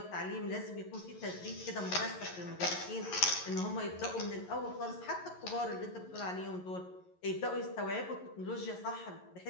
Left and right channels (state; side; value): late; right; 11 ms